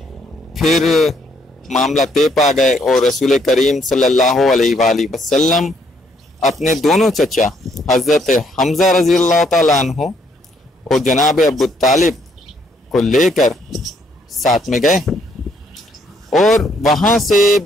پھر معاملہ طے پا گئے اور رسول کریم صلی اللہ علیہ وآلہ وسلم اپنے دونوں چچا حضرت حمزہ رضی اللہ تعالیٰ عنہ اور جناب ابو طالب کو لے کر ساتھ میں گئے، اور وہاں سے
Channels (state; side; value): normal; both; correlation 0.70